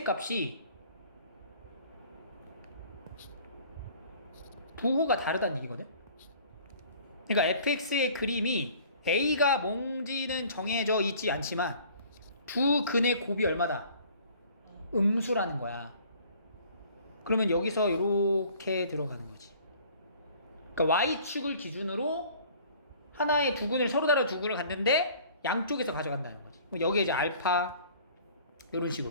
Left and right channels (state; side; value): inverted; both; correlation -0.51